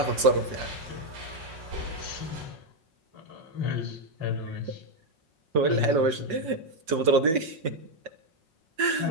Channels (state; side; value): late; left; 6.2 ms